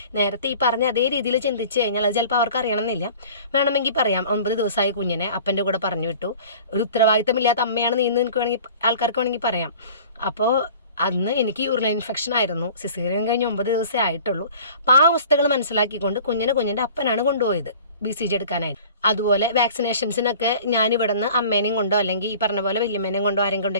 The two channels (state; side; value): inverted; both; correlation -0.45